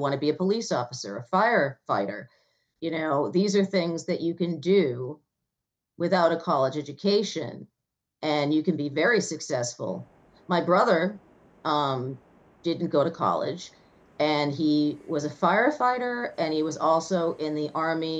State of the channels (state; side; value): identical; both; correlation 1.00